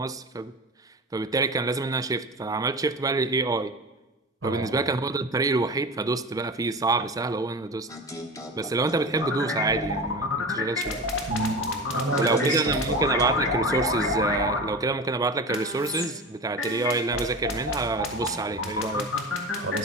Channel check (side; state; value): both; normal; correlation 0.29